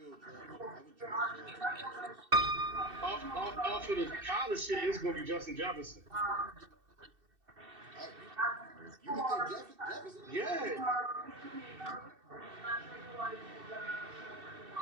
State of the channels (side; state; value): left; late; 2.7 ms